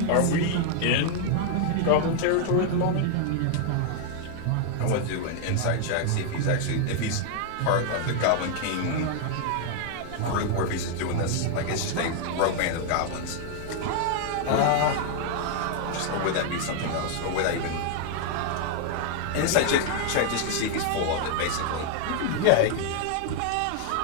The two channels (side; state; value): both; different; correlation 0.00